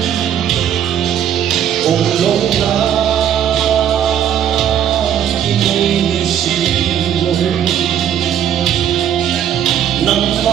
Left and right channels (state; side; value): quieter; left; 9.7 dB